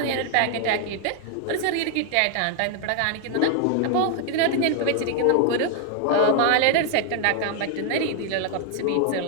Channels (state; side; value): different; both; correlation 0.00